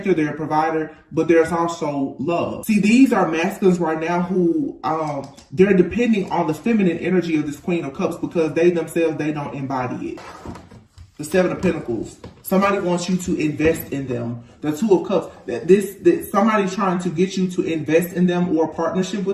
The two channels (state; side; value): identical; both; correlation 1.00